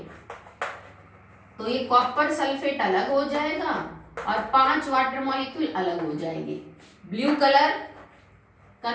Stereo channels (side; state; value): both; identical; correlation 1.00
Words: तो ये कॉपर सल्फेट अलग हो जाएगा और 5 वाटर मॉलिक्यूल अलग हो जाएंगे। Blue colour